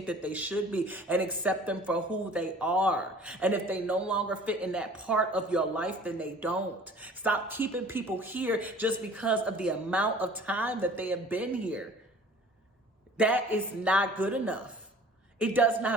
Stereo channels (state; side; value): normal; both; correlation 0.48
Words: that they should be and accept them for who they are. And if they no longer fit in that part of your life, then they don't. Stop keeping people here just because of the amount of time that they have been here. That is not good enough. It does